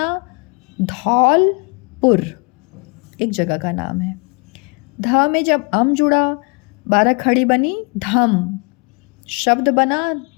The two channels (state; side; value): quieter; right; 33.5 dB